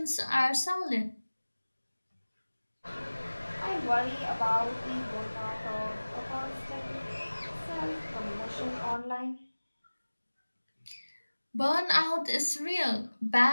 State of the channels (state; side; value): inverted; both; correlation -1.00